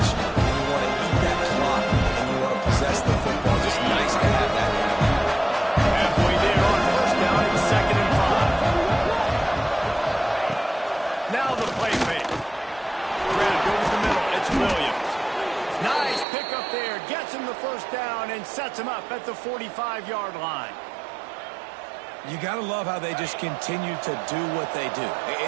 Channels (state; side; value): drops out; left; at 16.2 s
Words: And you want to eat that clock and you want to possess the football. Just nice to have that kind of thing. Halfway there on first down, it's 2nd and 5. Now the play fake. Grab over the middle. It's Williams. Nice pickup there. Gets him the first down and sets him up at the 45-yard line. You got to love how they just continue to do what they do.